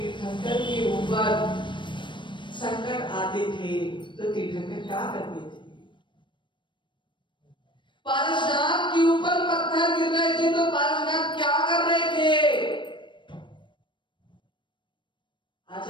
के ऊपर संकट आते थे तो तीर्थंकर क्या करते थे? पारसनाथ के ऊपर पत्थर गिर रहे थे तो पारसनाथ क्या कर रहे थे?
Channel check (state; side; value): late; right; 0.23 ms